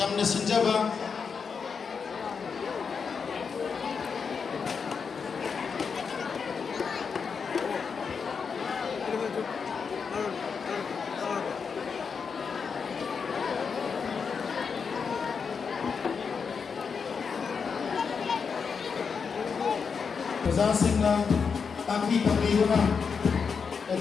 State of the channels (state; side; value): quieter; right; 5.8 dB